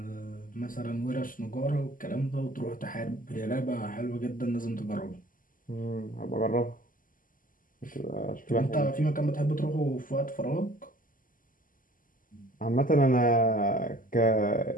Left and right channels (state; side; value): late; right; 0.40 ms